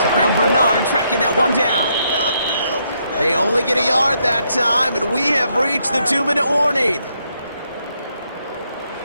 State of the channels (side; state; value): both; inverted; correlation -0.76